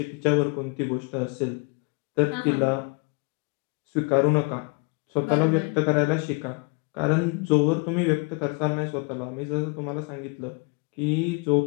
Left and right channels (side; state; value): right; quieter; 31.5 dB